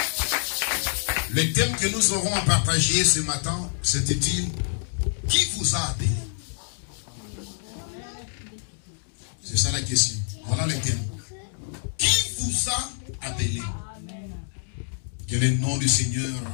Le thème que nous aurons à partager ce matin, c'était-il, qui vous a appelé? C'est ça la question. Voilà le thème. Qui vous a appelé? Que le nom du Seigneur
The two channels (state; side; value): silent; right; digital silence